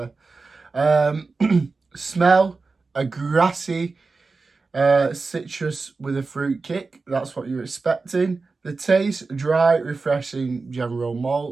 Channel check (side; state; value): left; quieter; 4.1 dB